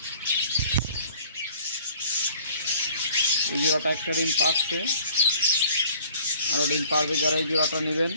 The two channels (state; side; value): inverted; both; correlation -0.53